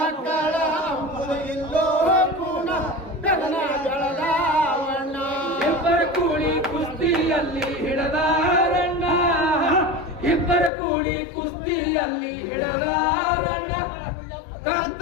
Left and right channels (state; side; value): drops out; right; at 10.7 s